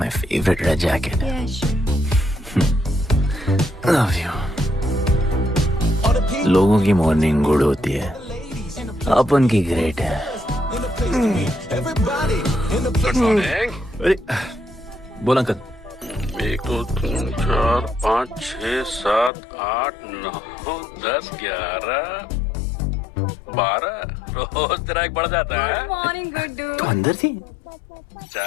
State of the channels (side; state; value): right; drops out; at 19.3 s